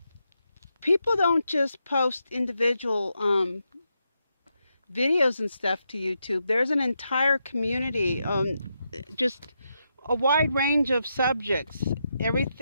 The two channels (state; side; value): inverted; both; correlation -0.83